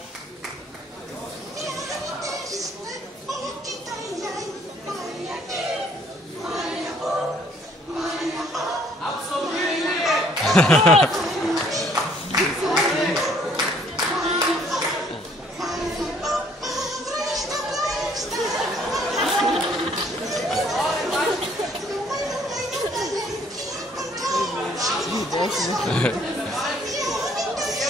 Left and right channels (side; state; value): both; normal; correlation 0.62